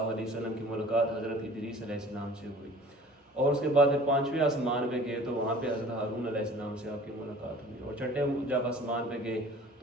علیہ وسلم کی ملاقات حضرت ادریس علیہ السلام سے ہوئی، اور اس کے بعد پھر پانچویں آسمان پہ گئے تو وہاں پہ حضرت ہارون علیہ السلام سے آپ کی ملاقات ہوئی، اور چھٹے جب آسمان پہ گئے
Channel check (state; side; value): normal; both; correlation 0.46